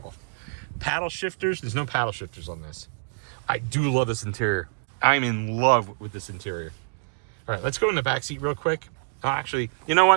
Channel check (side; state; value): left; silent; digital silence